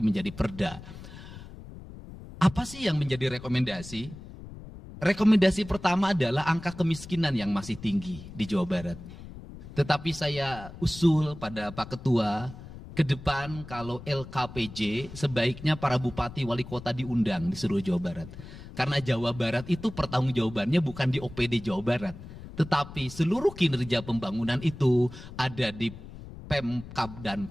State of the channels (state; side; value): noise; left; rumble, 15 dB below the sound